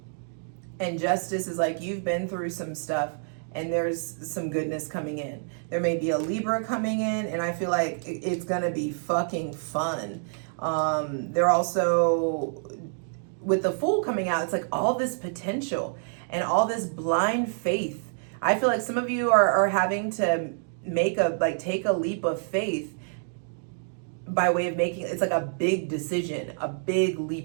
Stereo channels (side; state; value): left; silent; digital silence